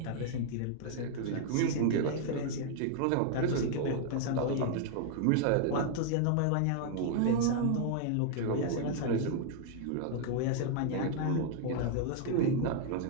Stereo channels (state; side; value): different; both; correlation 0.00